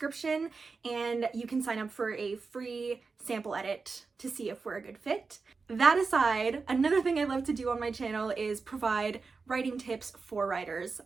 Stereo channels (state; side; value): quieter; left; 4.5 dB